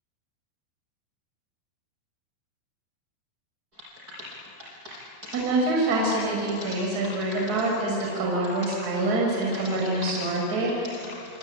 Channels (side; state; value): left; late; 4.7 ms